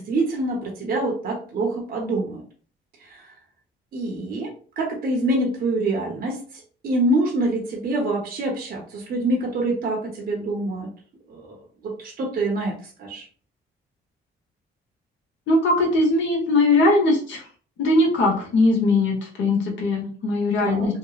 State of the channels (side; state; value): both; normal; correlation 0.45